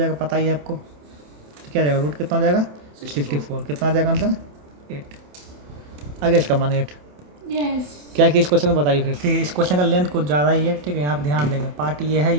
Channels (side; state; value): left; late; 27 ms